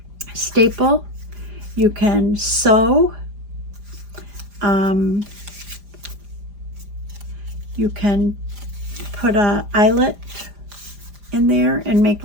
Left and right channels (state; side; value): late; left; 4.9 ms